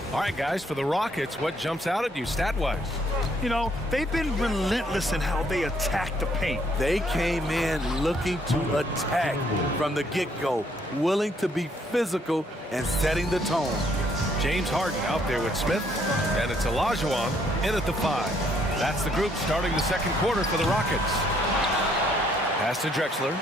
All right, guys, for the Rockets, what jumps out at you stat-wise? You know, they've been relentless in how they attack the paint. They came in looking to attack from the get-go, willing to be physical and setting the tone. James Harden out there with Smith, and it's Olajuwon in at the 5. That's the group starting the second quarter for the Rockets. Pass to Drexler.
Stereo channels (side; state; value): both; normal; correlation 0.67